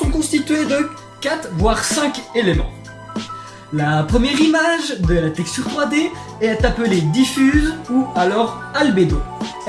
constituées de 4 voire 5 éléments. La première image de la texture 3D est appelée diffuse ou alors albédo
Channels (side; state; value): both; identical; correlation 1.00